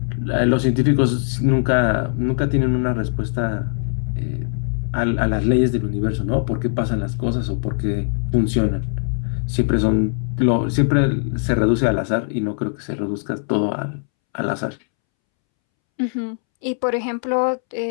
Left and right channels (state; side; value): silent; right; 65 dB below the other